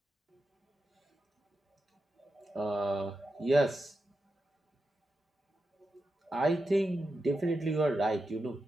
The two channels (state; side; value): normal; both; correlation 0.89